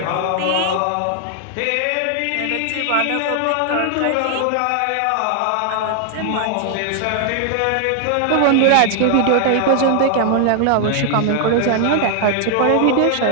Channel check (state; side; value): different; both; correlation 0.00